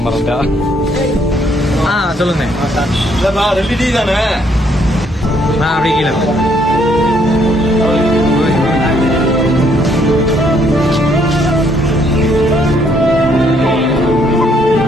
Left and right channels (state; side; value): normal; both; correlation 0.68